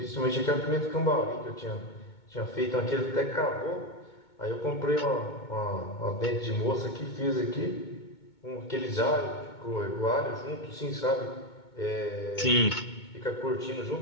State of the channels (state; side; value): late; right; 2.2 ms